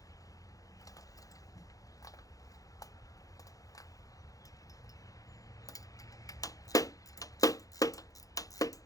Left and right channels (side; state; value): right; late; 0.17 ms